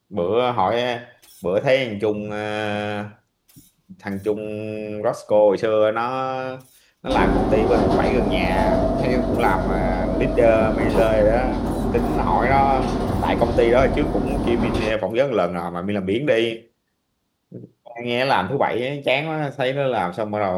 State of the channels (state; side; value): identical; both; correlation 1.00